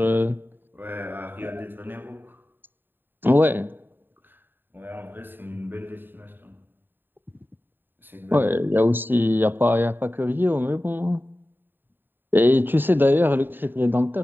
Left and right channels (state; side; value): late; left; 0.094 ms